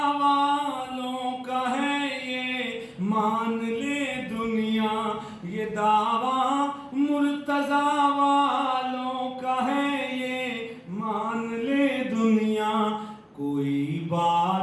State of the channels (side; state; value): both; identical; correlation 1.00